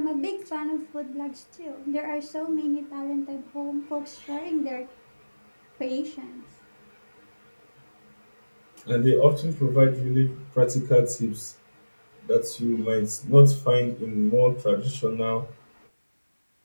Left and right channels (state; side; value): inverted; both; correlation -1.00